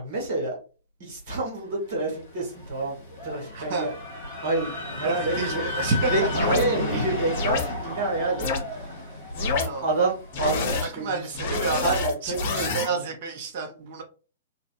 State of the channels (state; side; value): inverted; both; correlation -0.41